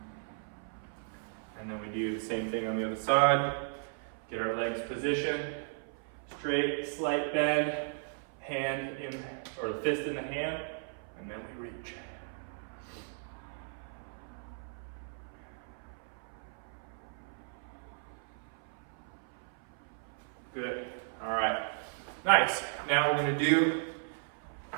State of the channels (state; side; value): silent; left; 54 dB below the other